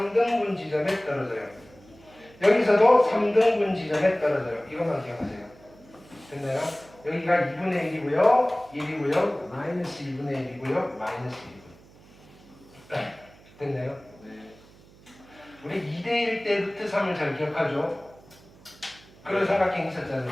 지점에 떨어져요. 여기서도 3등분 지점에 떨어져요. 이것만 기억하세요. 됐나요? 여기가 2분의 1이고요. 1이고요. 마이너스 2분의 1이고요. 마이너스 2분. 됐나요? 네. 우리 2대1 때 루트 3을 잘 기억하죠? 그런 삼각형 있었잖아요.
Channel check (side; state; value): right; noise; hum, 25 dB below the sound